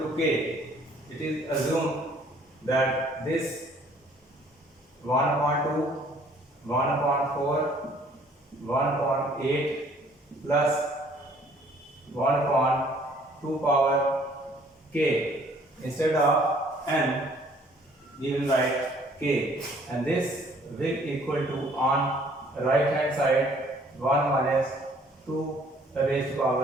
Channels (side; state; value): both; normal; correlation 0.59